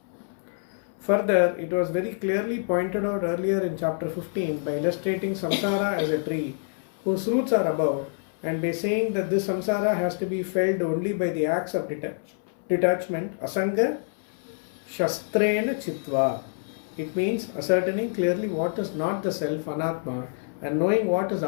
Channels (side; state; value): right; silent; 60 dB below the other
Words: Further, it was very clearly pointed out earlier in chapter 15 by illustrating samsara as a tree whose roots are above, and by saying that this samsara has to be felt only by the acts of detachment, asanga shastrena chitva. It means ascertaining clearly what is not the self, anatma, and knowing what is